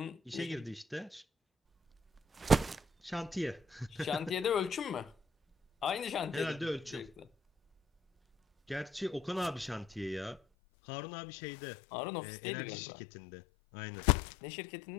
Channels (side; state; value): right; drops out; at 10.4 s